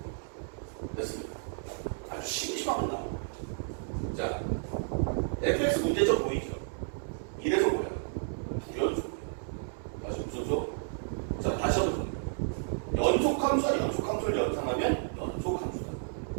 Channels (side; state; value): left; silent; digital silence